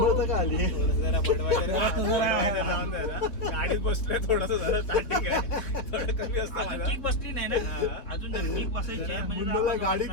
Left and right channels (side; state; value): right; late; 3.4 ms